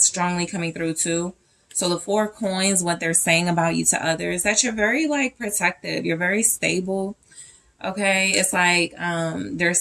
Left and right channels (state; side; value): identical; both; correlation 1.00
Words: strongly coming through too. So the Four of Coins, what they're saying about you to others, that you're very like protective, you're very stable, okay. It's like they're